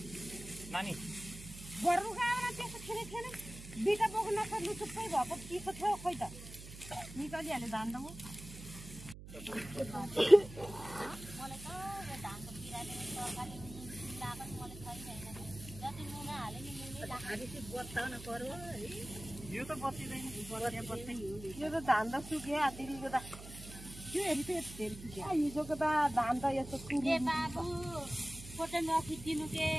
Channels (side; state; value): right; noise; hum, 13 dB below the sound